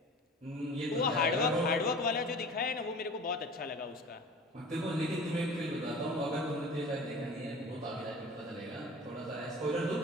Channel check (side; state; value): both; normal; correlation 0.40